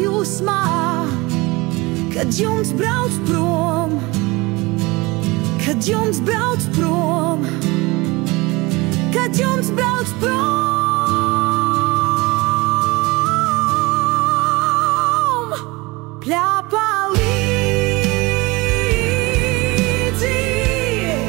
kad jums brauc prom, kad jums brauc prom, kad jums brauc prom. Pļāpā līdzi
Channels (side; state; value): left; quieter; 23.4 dB